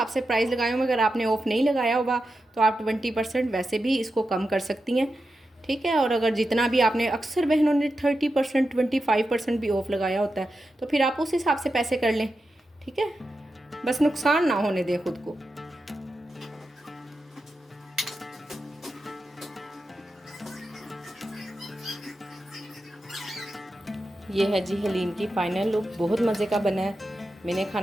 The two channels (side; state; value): both; normal; correlation 0.89